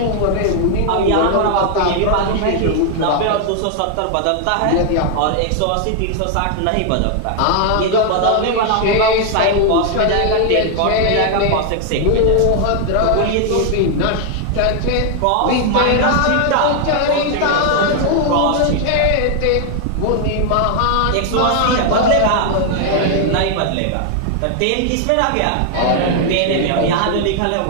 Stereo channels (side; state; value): both; different; correlation 0.00